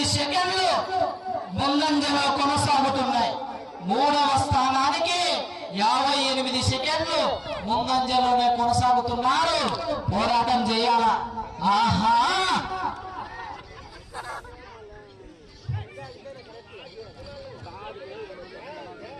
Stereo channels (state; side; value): identical; both; correlation 1.00